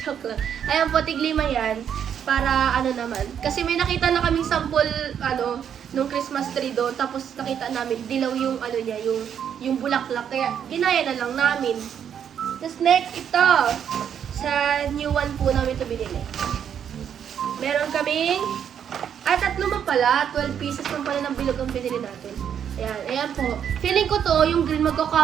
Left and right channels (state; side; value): quieter; left; 8.6 dB